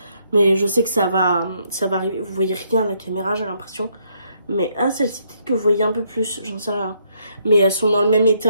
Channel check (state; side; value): inverted; both; correlation -0.71